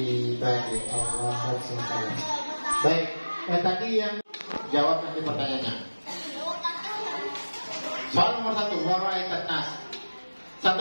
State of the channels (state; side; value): inverted; both; correlation -1.00